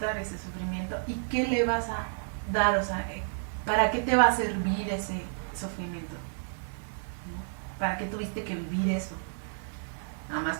ese sufrimiento y qué le vas a dar, o sea, ¿para qué te va a servir ese sufrimiento? ¿No? ¿Para qué tuviste que vivir eso? Nada más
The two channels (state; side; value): silent; left; digital silence